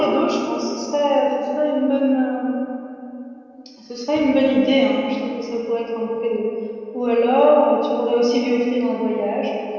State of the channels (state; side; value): identical; both; correlation 1.00